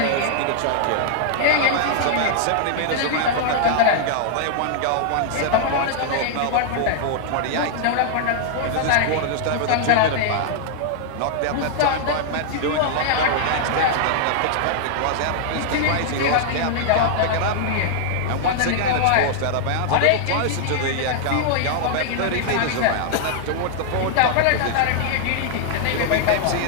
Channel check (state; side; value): different; both; correlation -0.01